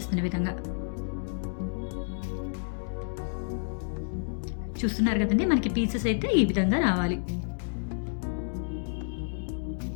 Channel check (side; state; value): right; silent; digital silence